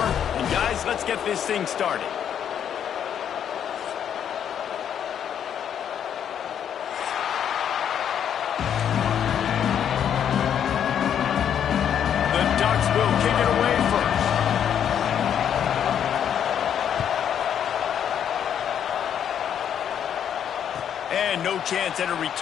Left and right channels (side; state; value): right; quieter; 9.0 dB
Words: And guys, let's get this thing started. The Ducks will kick it away first. And no chance at a